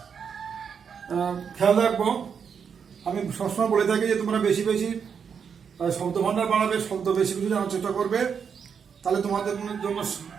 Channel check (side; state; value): left; quieter; 6.8 dB